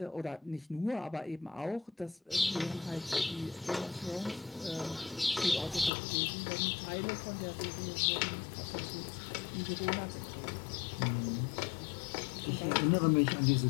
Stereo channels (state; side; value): drops out; right; at 5.9 s